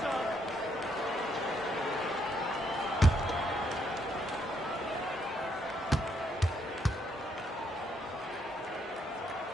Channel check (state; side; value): normal; both; correlation 0.74